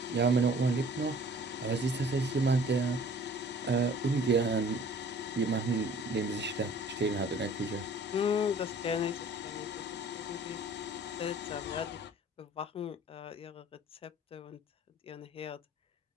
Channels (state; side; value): normal; both; correlation 0.50